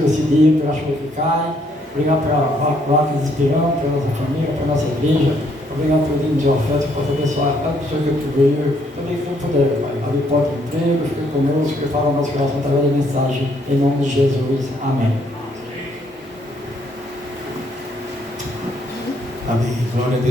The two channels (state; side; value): normal; both; correlation 0.69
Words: esse dia, pela chuva que cai. Obrigado pela placa de Espirão, pela nossa família, pela nossa igreja. Obrigado pelo dia de oferta, que possa abençoar cada pessoa que tu veio. Também quem puder, Pai. Abre porta de emprego, fique conosco, que fala o nosso coração através da mensagem. Em nome de Jesus. Amém. Amém. Glória a